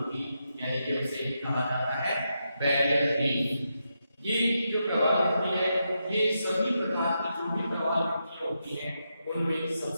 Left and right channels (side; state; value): both; inverted; correlation -0.84